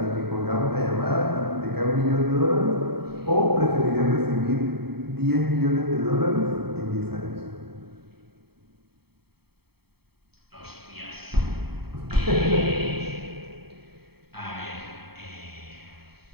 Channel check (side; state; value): left; late; 0.96 ms